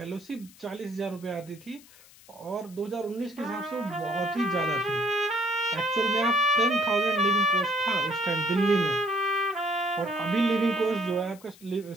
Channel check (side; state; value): left; noise; hiss, 24 dB below the sound